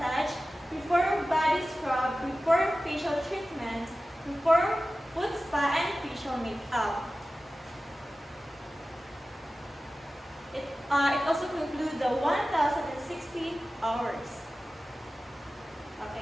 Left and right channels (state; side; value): normal; both; correlation 0.95